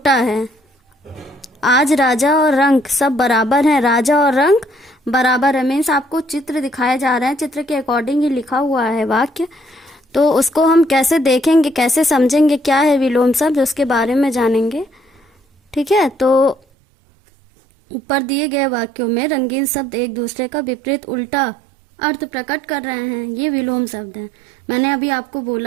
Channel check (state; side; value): drops out; left; at 16.6 s